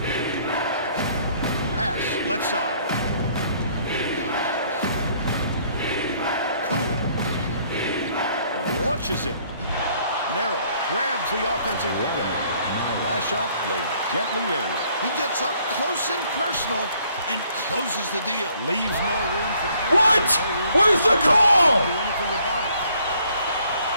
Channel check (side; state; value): both; inverted; correlation -0.63